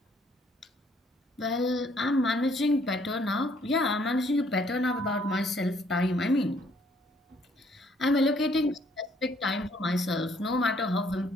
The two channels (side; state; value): both; normal; correlation 0.64